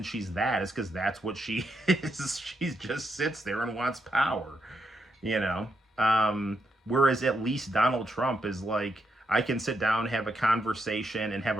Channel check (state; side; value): normal; both; correlation 0.81